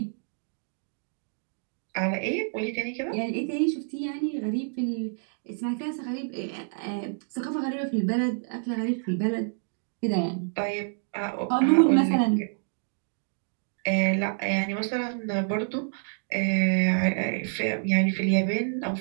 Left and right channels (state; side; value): silent; left; digital silence